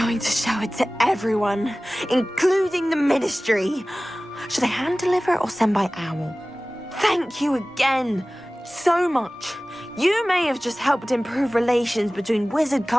to show it to everyone, including the Ministry. Should I hand deliver it or send by owl? Thank you again. So much. You may have just helped improve relations between wizard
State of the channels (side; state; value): both; normal; correlation 0.98